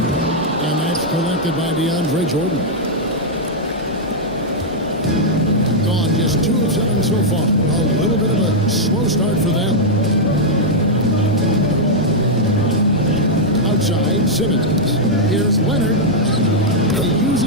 And that's collected by DeAndre Jordan. Gone just 2 of 7 so far. A little bit of a slow start for them. Outside, Simmons. Here's Leonard. He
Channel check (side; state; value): both; normal; correlation -0.04